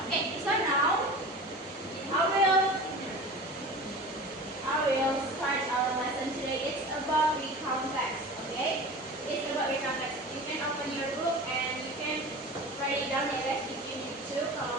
Okay, so now I will start about recount text. Okay, it's about recount text. You can open your book and you can write it down ya guys if you need to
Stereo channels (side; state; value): both; normal; correlation 0.35